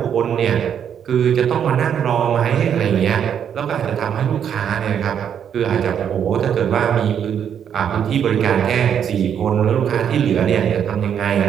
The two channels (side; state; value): left; quieter; 8.5 dB